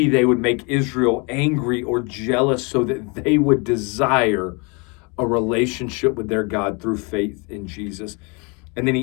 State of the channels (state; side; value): quieter; right; 31.1 dB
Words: they would make Israel angry or jealous so that they would desire a relationship with their God through faith in Jesus. And then